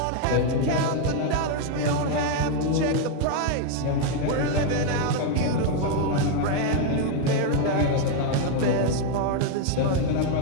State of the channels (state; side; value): different; both; correlation 0.01